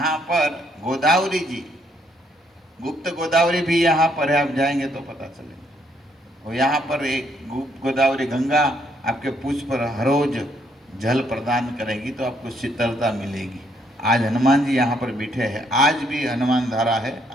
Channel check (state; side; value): normal; both; correlation 0.71